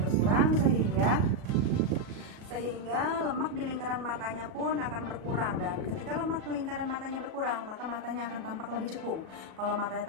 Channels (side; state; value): left; late; 37 ms